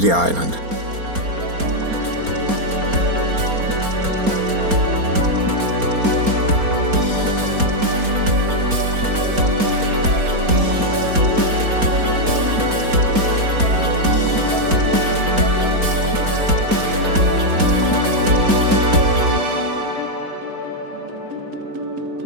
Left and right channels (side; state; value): left; late; 4.3 ms